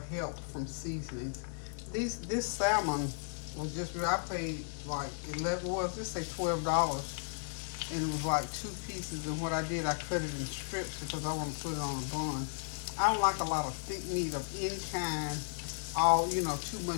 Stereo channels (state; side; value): silent; right; digital silence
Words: help from seasonings. This salmon was I paid like let's say $12, and it was like 2 pieces. And what I did, I cut it in strips because I want to put it on a bun. I don't like a lot of thick meat of any kind. Too